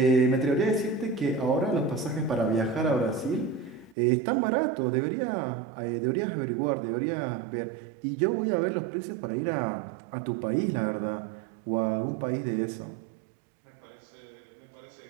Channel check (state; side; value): drops out; left; at 4.0 s